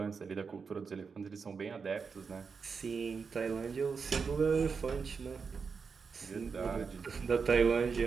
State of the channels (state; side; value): quieter; left; 5.4 dB